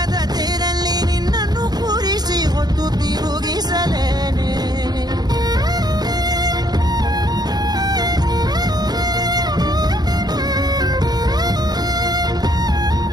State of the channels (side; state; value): left; late; 0.19 ms